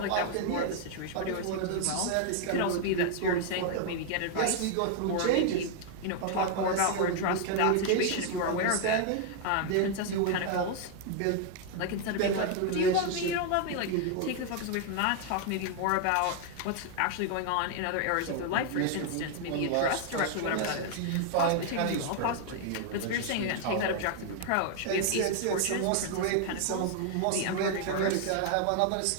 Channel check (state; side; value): different; both; correlation 0.00